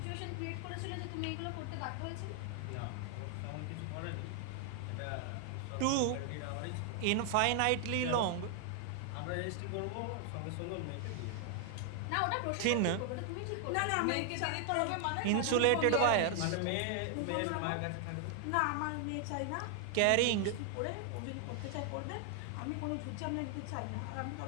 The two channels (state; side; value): different; both; correlation 0.00